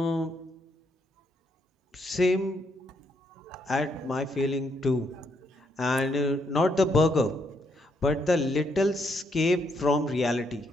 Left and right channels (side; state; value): both; normal; correlation 0.75